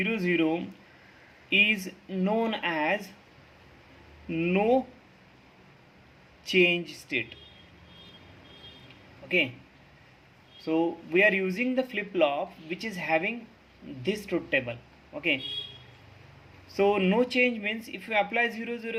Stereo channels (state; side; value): identical; both; correlation 1.00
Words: 0 is known as no change state. Okay, so we are using the flip flop which is having this truth table. Okay, so no change means if you apply 0